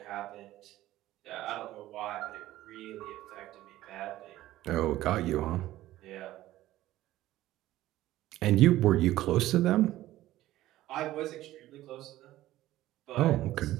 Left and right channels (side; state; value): left; quieter; 15.2 dB